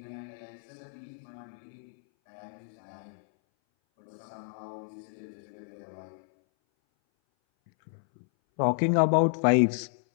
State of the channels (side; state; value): right; silent; 57 dB below the other